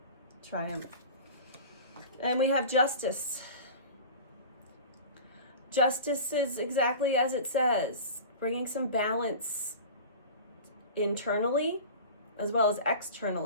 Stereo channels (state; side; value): inverted; both; correlation -0.36